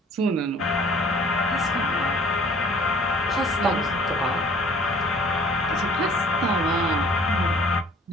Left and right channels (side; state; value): both; normal; correlation 0.53